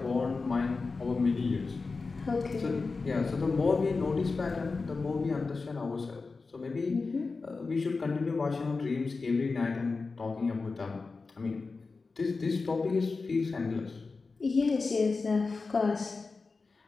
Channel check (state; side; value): quieter; right; 4.1 dB